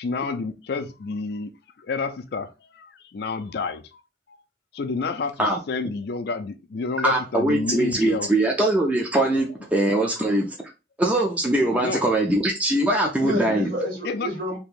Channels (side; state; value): both; normal; correlation 0.51